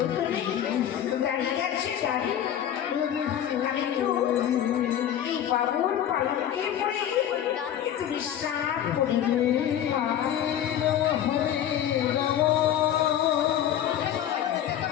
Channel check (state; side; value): quieter; right; 10.4 dB